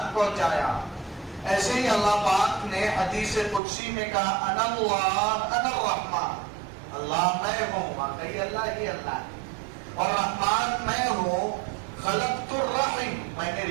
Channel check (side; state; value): left; drops out; at 3.6 s